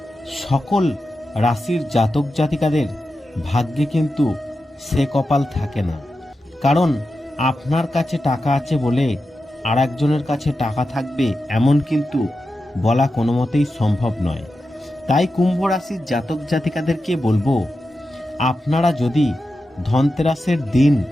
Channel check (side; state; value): both; normal; correlation 0.90